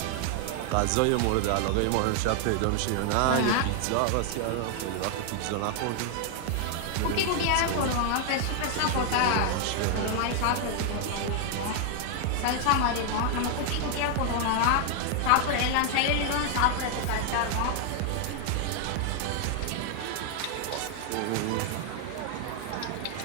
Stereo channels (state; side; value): different; both; correlation 0.00